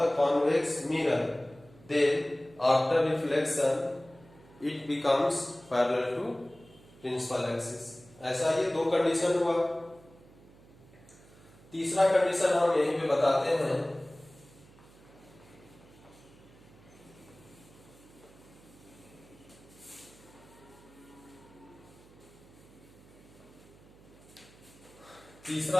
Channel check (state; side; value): noise; right; hum, 24 dB below the sound